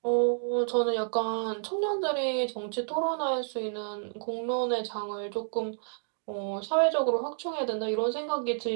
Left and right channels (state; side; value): silent; left; digital silence